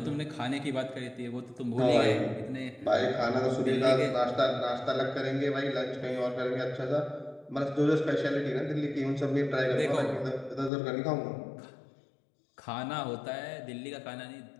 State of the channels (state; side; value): drops out; right; at 10.7 s